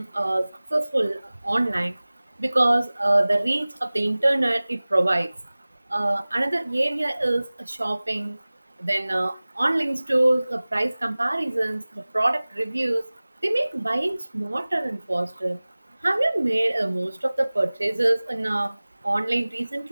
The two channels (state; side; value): inverted; both; correlation -0.99